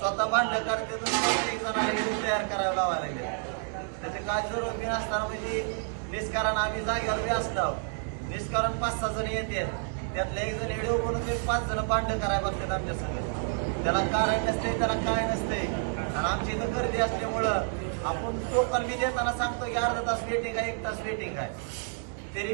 भांडण करते तर स्वतः एक जणाला व्हिडिओ तयार करायला लावायला लागले. त्याचे काय जरूर बी नसताना म्हणजे निष्कारण आम्ही जागेवर बी असलो निष्कारण 5-6 जण येते, त्यातले एक जण व्हिडिओ बनवून 5 जण भांडण करायला बघतात आमच्या संग. त्याला कारण नसते, त्याला काय नसते. आणि आमची इथं गर्दी असल्यामुळं आपण टोकन बी देताना सांगतो की अर्धा तास वेटिंग आहे, 1 तास वेटिंग आहे. तरी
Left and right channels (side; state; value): left; silent; 55 dB below the other